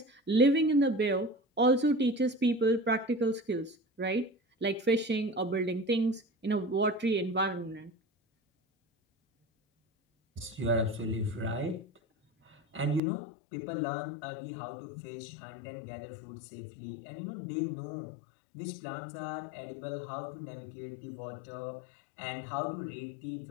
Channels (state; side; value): drops out; right; at 13.0 s